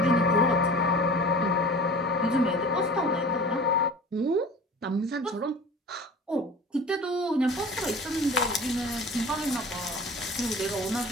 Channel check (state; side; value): normal; both; correlation 0.40